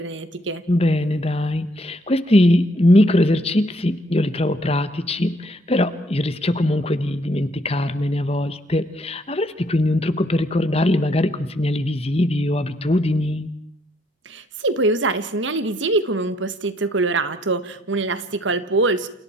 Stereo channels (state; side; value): normal; both; correlation 0.67